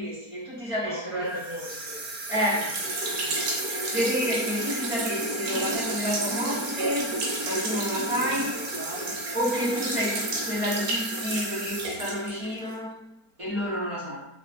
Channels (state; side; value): late; left; 4.4 ms